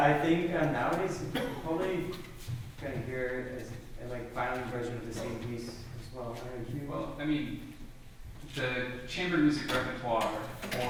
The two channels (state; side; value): identical; both; correlation 1.00